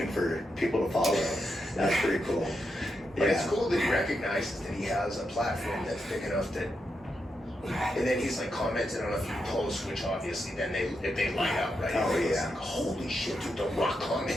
for people to follow. That's pretty cool. But Yeah. it's cool that he recognizes that he has a platform that's big enough that, and then he's like commenting on a few posts, which obviously then they light up, right? Oh, It's yeah. like, holy shit, dude, The Rock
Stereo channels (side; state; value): both; normal; correlation 0.84